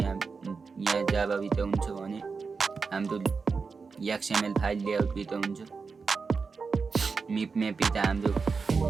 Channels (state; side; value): quieter; left; 4.9 dB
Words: जाभा भित्र हुन्छ भने हाम्रो XML फाइल लेआउट भित्र हुन्छ। मिप म्याप भित्र हाम्रो